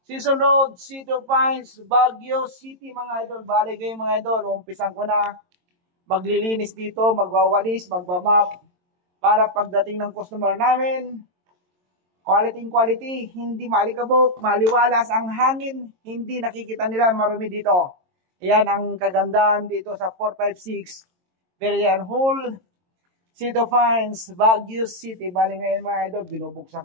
Season Road, City of Pines, Baguio City mga idol. Bali kayo mga idol, umpisan ko na maglilinis dito, magwawalis, magbamap para pagdating ng customer namin, quality, hindi malikabok, maliwalas ang hangin, hindi nakikita nila marumi dito. Ayan ang kagandahan dito sa 456 Berian Hall, City of Pines, Baguio City. Bali ngayon mga idol, binubuksan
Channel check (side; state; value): left; late; 22 ms